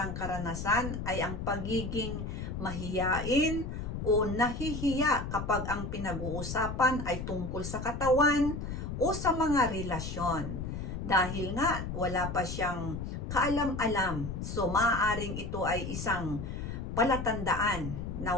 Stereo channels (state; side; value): noise; left; rumble, 5 dB below the sound